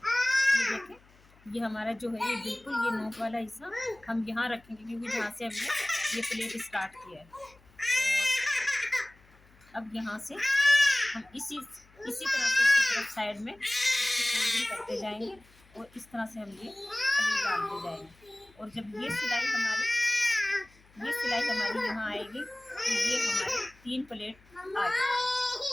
ये देखें ये हमारा जो है ये बिल्कुल ये नोक वाला हिस्सा हम यहाँ रखेंगे, क्योंकि जहाँ से हमने ये प्लेट स्टार्ट किया है। और अब यहाँ से हम इसी तरह से इसकी तरफ साइड में फोल्डिंग करते जाएंगे, और इस तरह से हम ये प्लेट डालते जाएंगे। और जब ये सिलाई हमारी यहाँ आएगी तो ये हमारी 3 प्लेट आ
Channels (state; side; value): noise; left; hum, 29 dB below the sound